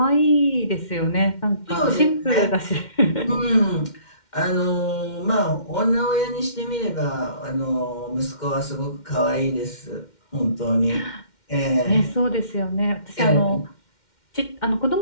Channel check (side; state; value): right; late; 2.1 ms